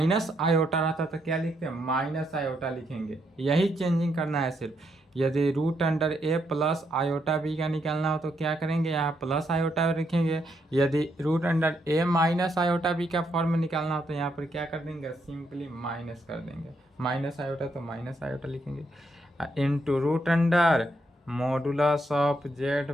आयोटा रहता तो क्या लिखते हैं? माइनस आयोटा लिखेंगे। यही चेंजिंग करना है सिर्फ। यदि रूट अंडर ए प्लस आयोटा बी का निकालना हो तो क्या करेंगे? यहाँ प्लस आयोटा लिखेंगे। यदि root under A minus iota B का फॉर्म में निकालना हो तो यहाँ पर क्या कर देंगे? सिंपली माइनस कर देंगे। माइनस आयोटा तो माइनस आयोटा लिखेंगे into root under modulus of Z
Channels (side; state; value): both; normal; correlation 0.77